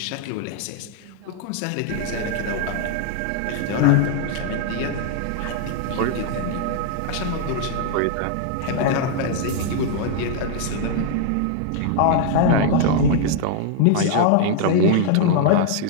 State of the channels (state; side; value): different; both; correlation 0.00